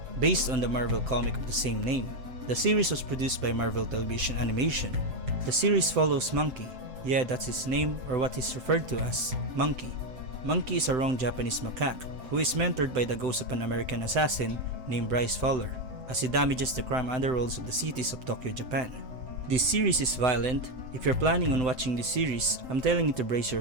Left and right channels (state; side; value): late; left; 7.8 ms